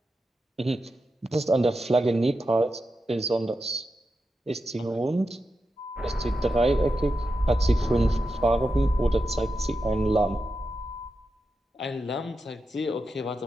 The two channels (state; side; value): normal; both; correlation 0.89